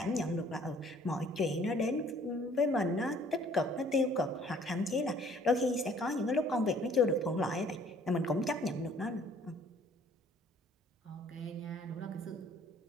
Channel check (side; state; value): both; normal; correlation 0.57